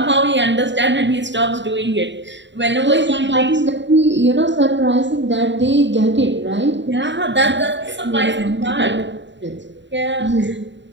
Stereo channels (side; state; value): left; late; 0.53 ms